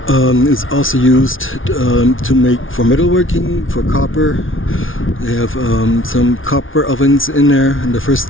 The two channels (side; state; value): right; late; 0.58 ms